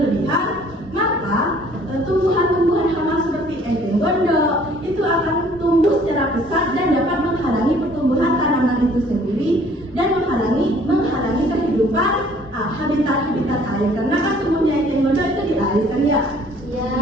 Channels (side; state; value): both; normal; correlation 0.56